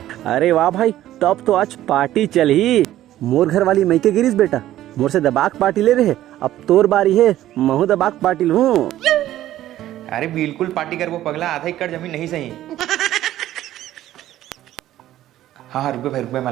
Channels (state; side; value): quieter; left; 13.5 dB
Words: अरे वाह भाई, तब तो आज पार्टी चल ही। मोर घर वाली मैके गिरीस बेटा, मोर से दबाक पार्टी ले रहे। अब तोर बारी है, महू दबाक पार्टी लूं। अरे बिल्कुल पार्टी कर वो पगला, आधा एकड़ जमीन नहीं सही। हाँ रुपये भाई, रुपये मैं